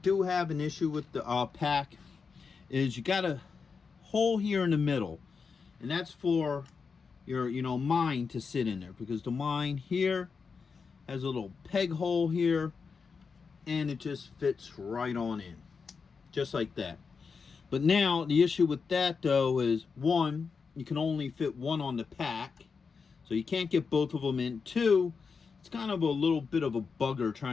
have an issue with the pack is you got a hole here in the middle. And that's for your, mine to sit in there. Because the mine here has a little peg hole here. And it just fits right on in. Just like that. But now, the issue with that, though, is one, you can only fit one on the pack. So you can't get both of them in. Two, it's kind of a little bit of a bugger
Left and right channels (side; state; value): right; quieter; 5.3 dB